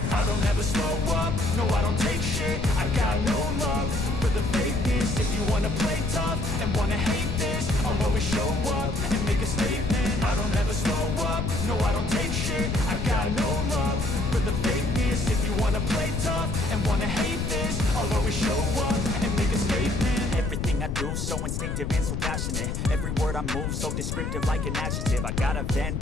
I don't ever slow up, no I don't take shit. I got no love for the fakeness. If you wanna play tough and wanna hate this, I'll always show up and make a statement. I don't ever slow up, no I don't take shit. I got no love for the fakeness. If you wanna play tough and wanna hate this, I'll always show up and make a statement. Everything I do so instinctive and so passionate. Every word I move so descriptive like an adjective. I got a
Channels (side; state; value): left; noise; rumble, 2 dB below the sound